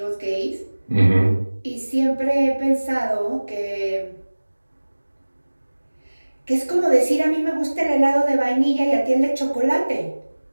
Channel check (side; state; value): both; inverted; correlation -1.00